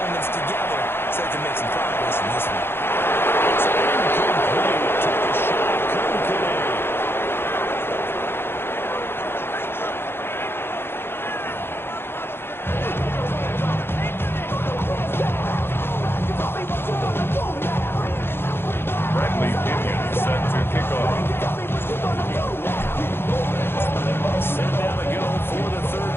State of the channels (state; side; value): late; right; 0.11 ms